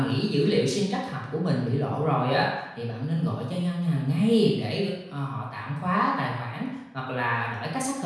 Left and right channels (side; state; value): both; identical; correlation 1.00